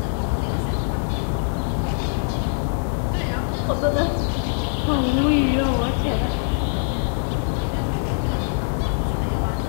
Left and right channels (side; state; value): right; silent; 62 dB below the other